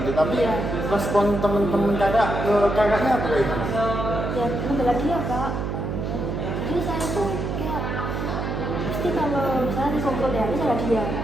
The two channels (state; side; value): noise; right; hum, 3 dB below the sound